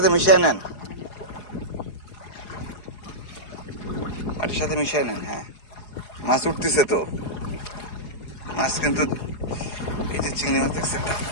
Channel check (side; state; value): right; late; 4.8 ms